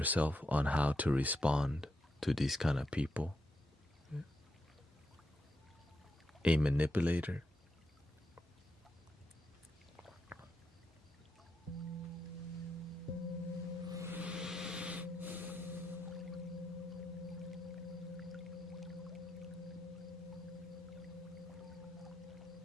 on how to respond to these kind of people. A manipulator.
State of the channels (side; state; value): both; normal; correlation 0.83